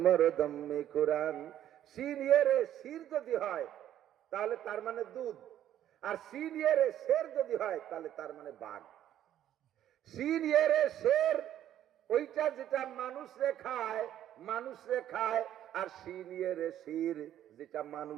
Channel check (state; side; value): quieter; left; 11.5 dB